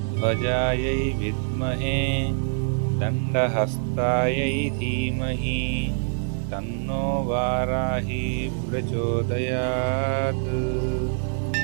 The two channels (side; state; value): left; silent; 59 dB below the other